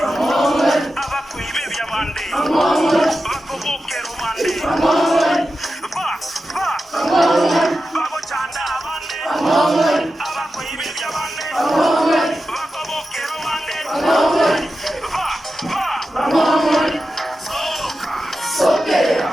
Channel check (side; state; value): both; normal; correlation 0.91